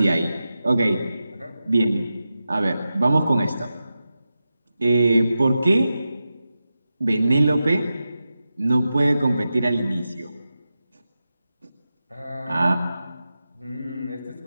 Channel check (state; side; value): inverted; both; correlation -0.91